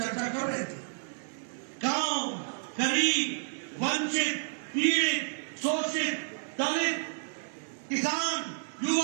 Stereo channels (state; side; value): silent; left; digital silence